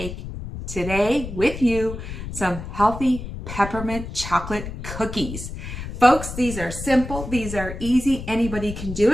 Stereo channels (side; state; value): left; noise; rumble, 9 dB below the sound